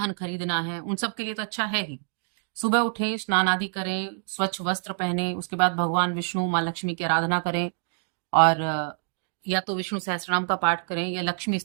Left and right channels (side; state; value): left; silent; digital silence